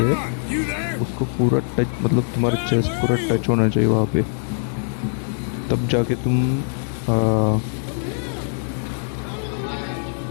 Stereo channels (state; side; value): silent; right; digital silence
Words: उसको पूरा टच, मतलब तुम्हारा चेस्ट पूरा टच होना चाहिए वहाँ पे, तब जाके तुम